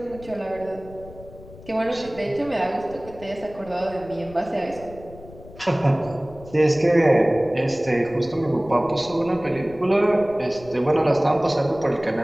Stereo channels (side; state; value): left; noise; rumble, 19 dB below the sound